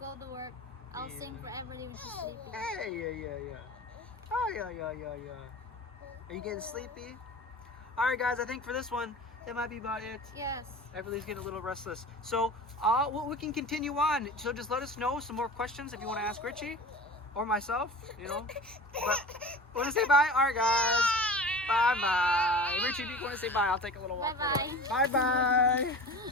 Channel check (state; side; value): normal; both; correlation 0.37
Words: to work. I'll sing for Everly when she's sleeping. Hey, yeah. Oh, yeah. Are you getting sleepy? All right, guys, I think for this one, that might be about it. Yes. Everybody's getting a little restless. So we can continue on. So just let us know some more questions if you want to ask Richie or myself, But want to say bye? All right, guys. Bye-bye. Richie, if you want to say bye, I'll take a little walk. Bye-bye.